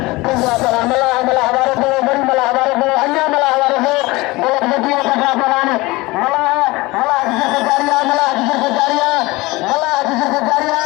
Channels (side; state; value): right; quieter; 21.8 dB